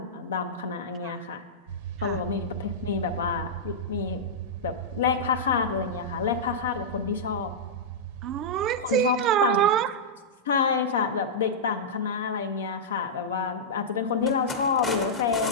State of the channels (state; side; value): normal; both; correlation -0.12